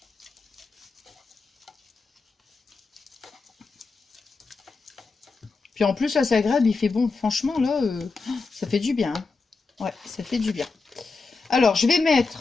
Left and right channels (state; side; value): quieter; right; 4.2 dB